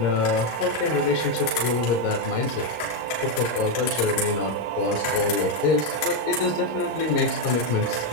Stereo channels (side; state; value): right; late; 26 ms